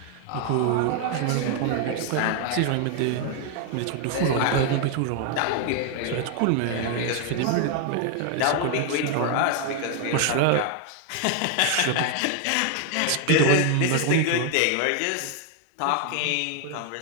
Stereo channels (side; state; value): both; different; correlation 0.00